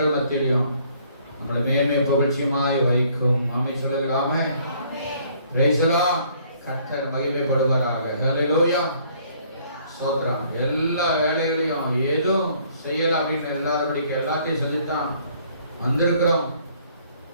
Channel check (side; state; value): both; inverted; correlation -0.61